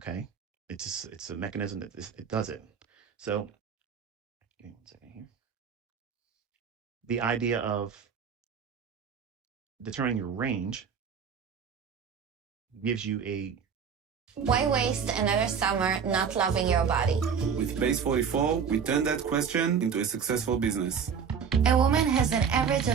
it's a mechanism that it does it. So, give me 1 second here. The idea of determining your range gives you a Why waste another summer not loving your body? With Base 44, we turned that question into a successful business. A woman has an average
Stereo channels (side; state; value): left; quieter; 6.8 dB